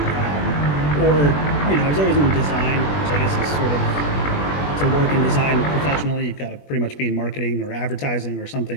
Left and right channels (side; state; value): right; late; 21 ms